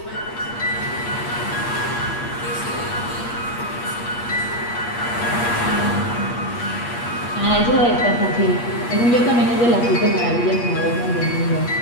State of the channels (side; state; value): right; late; 8.4 ms